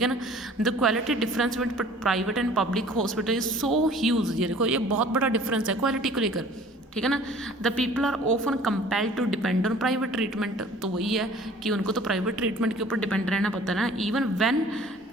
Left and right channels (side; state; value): both; normal; correlation 0.50